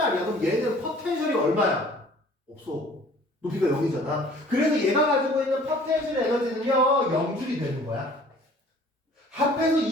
그럼 얘는 포텐셜이 얼마야? 없어. 높이가 0이잖아. 그래서 얘가 가지고 있는 포텐셜 에너지는요 0줄이 되는 거야. 합해서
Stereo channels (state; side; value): normal; both; correlation 0.52